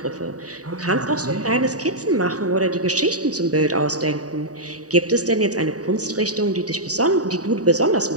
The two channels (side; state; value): left; late; 0.67 ms